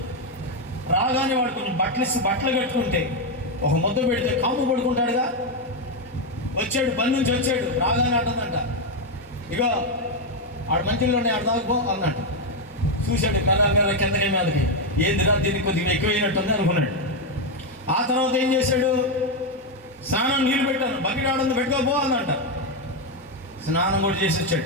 రాగానే వాడు కొంచెం బట్టలు కట్టుకుంటే ఒక ముద్ద పెడితే కాము పడుకుంటాడుగా. వచ్చాడు, పని నుంచి వచ్చాడు, రాగానే అంటుందంట, ఇగో ఆడు మంచిలో ఉన్నాయి, ఆడు తాగిపో అన్నట్టు. చూశాడు మెల్ల కిందకి మీదకి, ఏందిరా దీనికి కొద్దిగా ఎక్కువైనట్టుంది అనుకున్నాడు. ఆ తర్వాత ఏం చేశాడు? స్నానం నీళ్ళు పెట్టాను, బకెట్ ఆడుంది పెట్టుకోపో అన్నంట. స్నానం కూడా చేసి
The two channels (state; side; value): normal; both; correlation 0.04